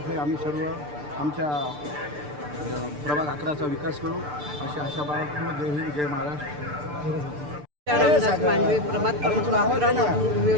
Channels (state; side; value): late; left; 6.8 ms